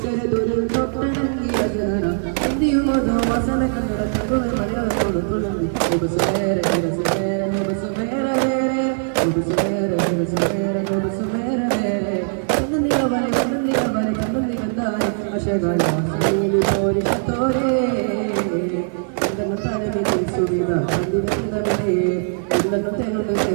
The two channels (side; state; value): left; silent; 58 dB below the other